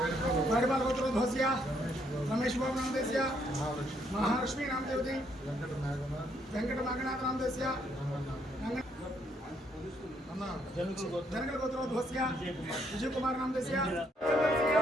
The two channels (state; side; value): normal; both; correlation 0.72